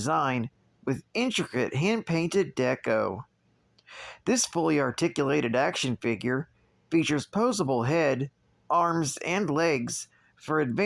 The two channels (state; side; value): identical; both; correlation 1.00